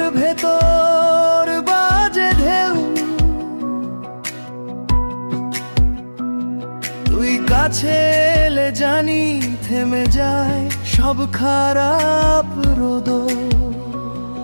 ভেতর বাজে ঢেউ। তুই কাছে এলে জানি থেমে যায় সব খারাপ রোদ।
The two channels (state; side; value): inverted; both; correlation -1.00